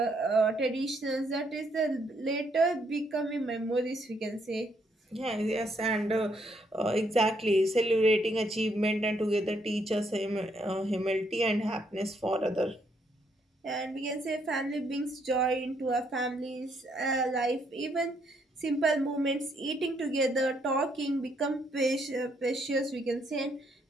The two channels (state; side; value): normal; both; correlation 0.72